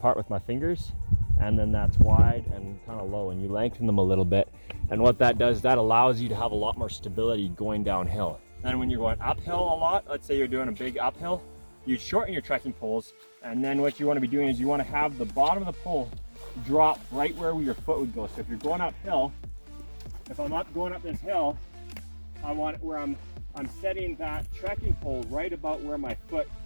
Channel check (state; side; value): inverted; both; correlation -1.00